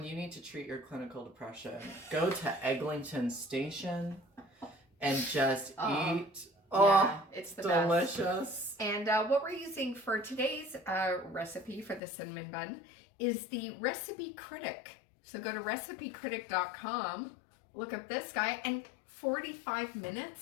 you need to treat your clinical depression, go to Eglinton Station and just eat. Yeah, it's the delicious. Best. And what we're using for today's recipe for the cinnamon bun is the Recipe Critic. So go to recipecritic.com, look up this guy, and 45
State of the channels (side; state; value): right; drops out; at 12.0 s